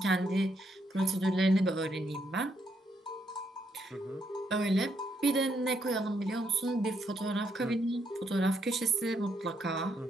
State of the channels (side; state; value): both; normal; correlation 0.76